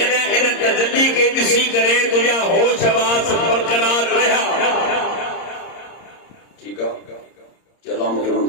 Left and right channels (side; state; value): right; late; 30 ms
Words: इन तजल्ली खे ॾिसी करे तुंहिंजा होश वास बरक़रार रहिया, ठीकु आहे, अल्लाह मूंखे